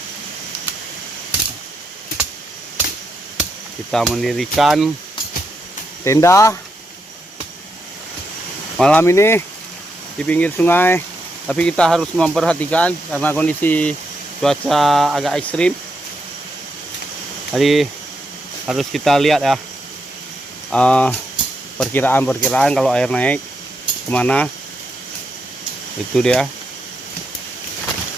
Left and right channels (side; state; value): both; normal; correlation 0.82